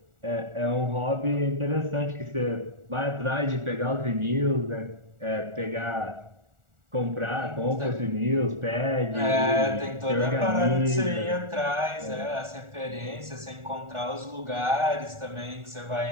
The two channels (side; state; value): left; late; 1.4 ms